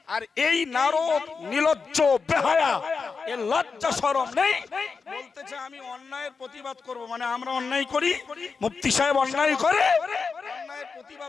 আর এই নারদ নিলজ্জ বেহায়া, এর লজ্জা শরম নেই, বলতেছে আমি অন্যায়ের প্রতিবাদ করব। মানে আমরা অন্যায় করি, মুফতি সাহেব অন্যায় করে, অন্যায়ের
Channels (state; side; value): quieter; right; 5.0 dB